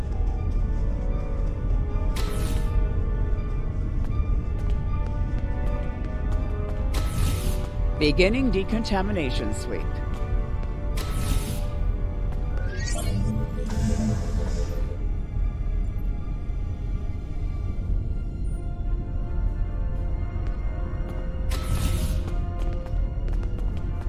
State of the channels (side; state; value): both; identical; correlation 1.00